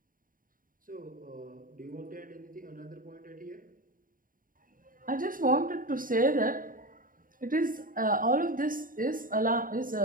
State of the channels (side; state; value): left; late; 0.40 ms